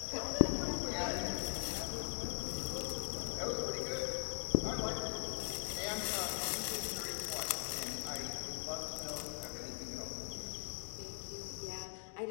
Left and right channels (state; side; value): silent; right; digital silence